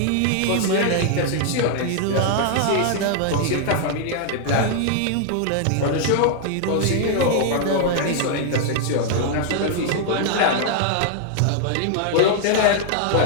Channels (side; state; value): both; different; correlation -0.01